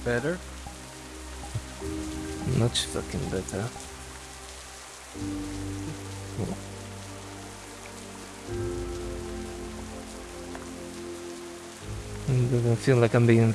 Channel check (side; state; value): both; identical; correlation 1.00